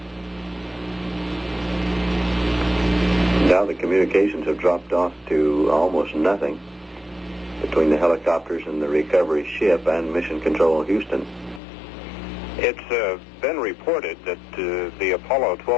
Now the communications have dropped off to almost nothing between the helicopters and the recovery ship and Mission Control Houston. It's been reported that the Apollo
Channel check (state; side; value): drops out; right; at 11.6 s